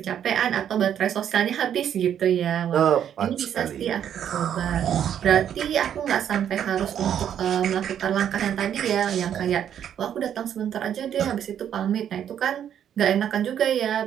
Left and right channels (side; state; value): left; quieter; 9.5 dB